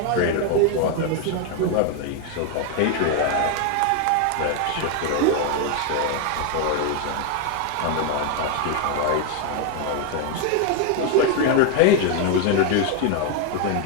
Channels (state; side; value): different; both; correlation 0.01